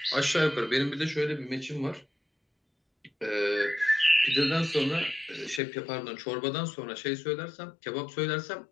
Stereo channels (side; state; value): right; drops out; at 5.6 s